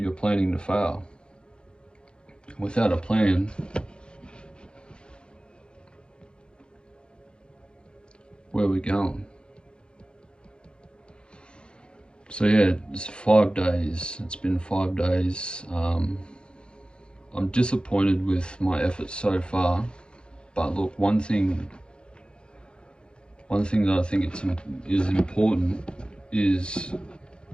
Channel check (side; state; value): right; late; 0.052 ms